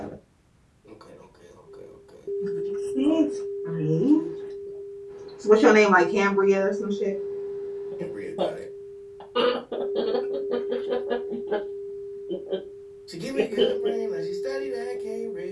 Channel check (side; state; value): both; identical; correlation 1.00